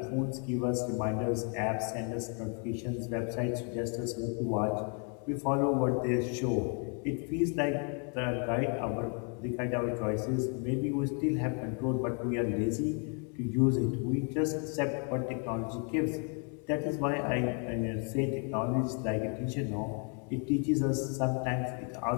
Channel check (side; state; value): right; quieter; 39.6 dB